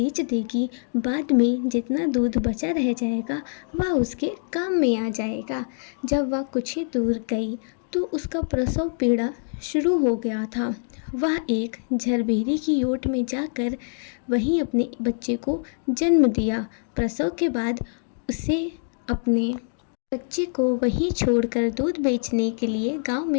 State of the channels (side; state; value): right; silent; digital silence